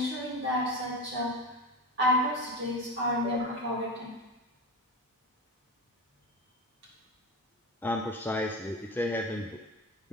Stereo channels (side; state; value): both; normal; correlation 0.24